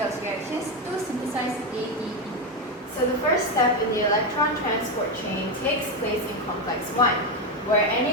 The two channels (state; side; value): normal; both; correlation 0.10